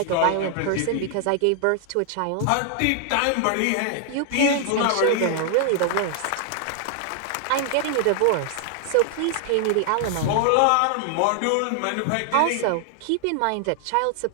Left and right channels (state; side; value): different; both; correlation 0.00